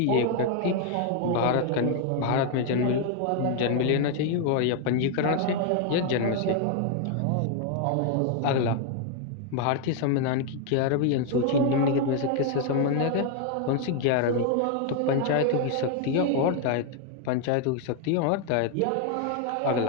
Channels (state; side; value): different; both; correlation 0.01